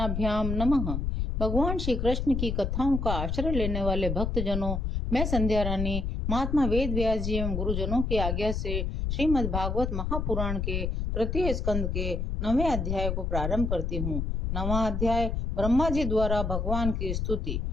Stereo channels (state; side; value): noise; left; rumble, 1 dB below the sound